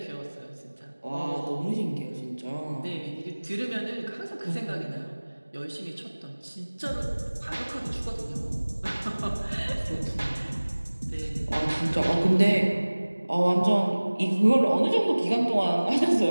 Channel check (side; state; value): both; inverted; correlation -1.00